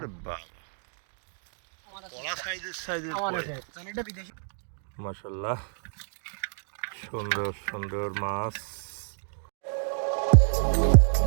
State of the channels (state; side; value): silent; left; digital silence